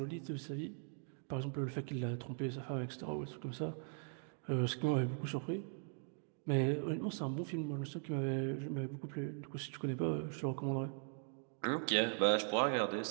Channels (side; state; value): left; silent; 51 dB below the other